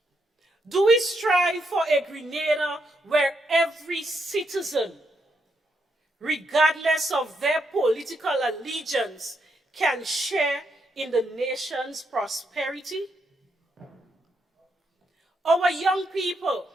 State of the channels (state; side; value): normal; both; correlation 0.80